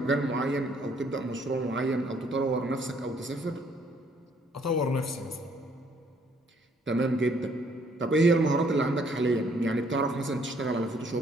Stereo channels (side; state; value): both; normal; correlation 0.65